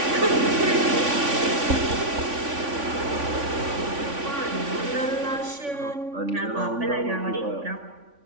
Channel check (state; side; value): late; left; 3.5 ms